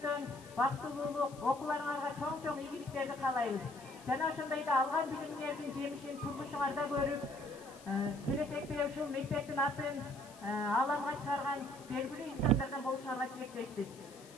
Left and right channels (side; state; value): left; noise; hiss, 21 dB below the sound